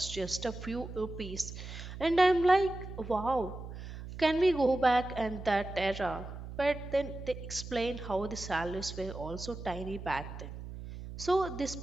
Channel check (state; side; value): noise; right; hum, 10 dB below the sound